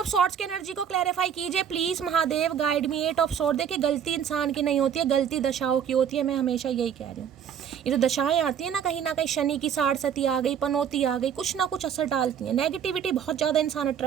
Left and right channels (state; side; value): quieter; left; 8.4 dB